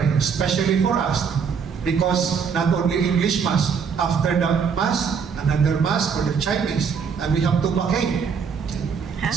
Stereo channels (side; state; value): left; quieter; 6.3 dB